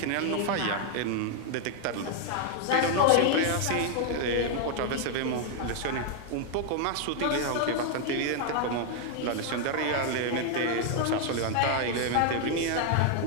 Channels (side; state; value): both; different; correlation 0.00